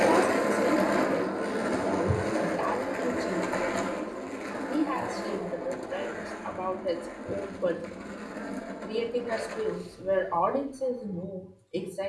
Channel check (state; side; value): identical; both; correlation 1.00